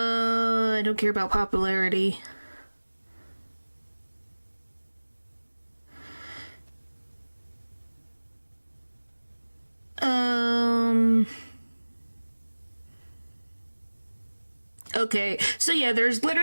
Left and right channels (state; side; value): inverted; both; correlation -1.00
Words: don't care about popularity. Okay, so yeah, there's